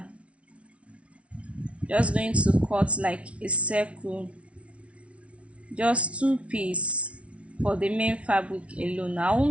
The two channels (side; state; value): left; late; 0.062 ms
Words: Just going to cut like a circle, just 2 pieces for the main fabric alone. I